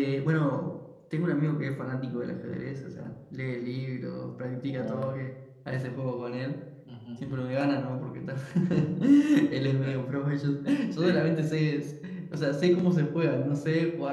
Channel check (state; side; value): identical; both; correlation 1.00